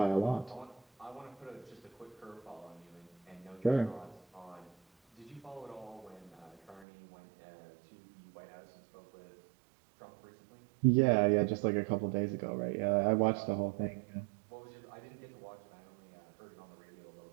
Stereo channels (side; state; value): left; drops out; at 6.9 s